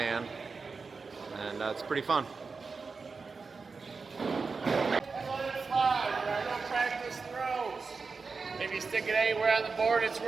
and it's pretty fun. Practice throws. If you stick it anywhere on the board, it's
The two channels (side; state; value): left; quieter; 4.6 dB